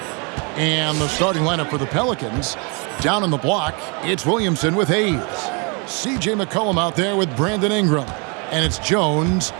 And the starting lineup for the Pelicans. Down on the block, it's Williamson with Hayes. C.J. McCollum out there with Brandon Ingram. And it's Jones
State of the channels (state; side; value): quieter; left; 33.2 dB